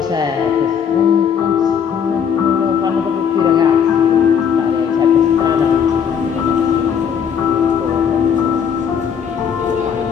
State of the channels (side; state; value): right; quieter; 7.5 dB